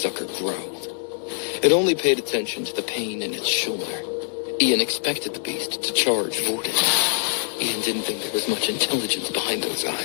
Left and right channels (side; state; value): right; silent; digital silence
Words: growled. It only paid attention to the pain in its shoulder. Ian expected the beast to charge Vorden. Ian didn't think there was much intelligence behind those